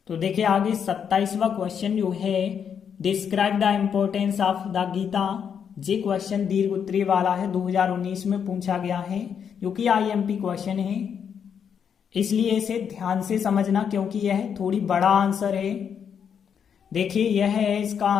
तो देखिए, आगे 27वां क्वेश्चन जो है, describe the importance of the Gita. ये क्वेश्चन दीर्घ उत्तरीय वाला है, 2019 में पूछा गया है, जो कि आईएमपी क्वेश्चन है। इसलिए इसे ध्यान से समझना, क्योंकि यह थोड़ी बड़ा आंसर है। देखिए, यह है इसका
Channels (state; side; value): quieter; right; 7.6 dB